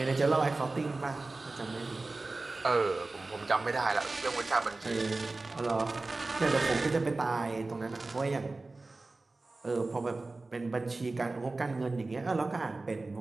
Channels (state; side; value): quieter; left; 3.3 dB